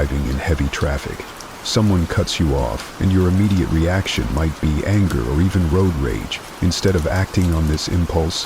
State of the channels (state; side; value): identical; both; correlation 1.00